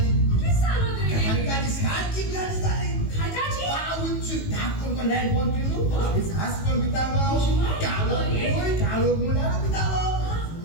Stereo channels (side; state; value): right; late; 18 ms